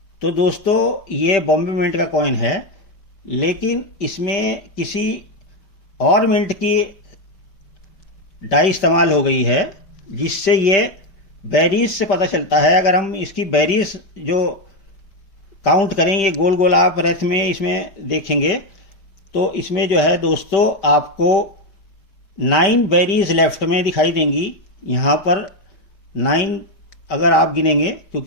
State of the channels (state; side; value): late; right; 5.1 ms